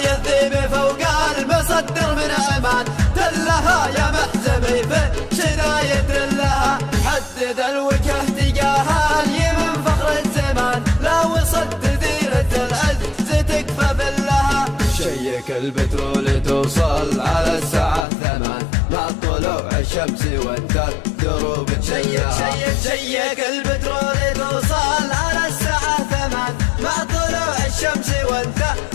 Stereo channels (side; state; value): right; drops out; at 18.1 s